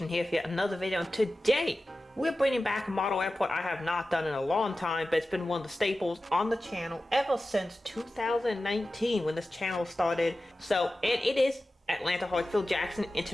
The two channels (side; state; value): both; normal; correlation 0.95